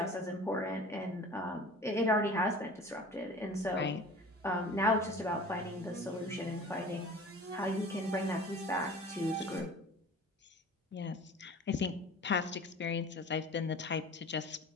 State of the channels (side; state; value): both; normal; correlation 0.42